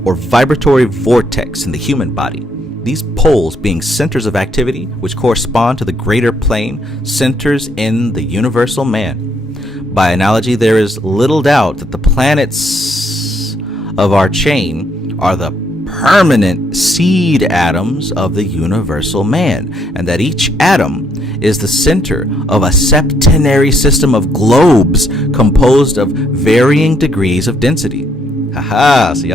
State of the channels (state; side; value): normal; both; correlation 0.71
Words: or vibratory vortex in the human body. These poles being centers of activity which correspond to the greater plane, centers in the universal man. By analogy, there is little doubt that the planets of our chain are the permanent seed atoms of the universal man, and that each atom is the center of a septenary system of globes composed of varying degrees of density. Haha, so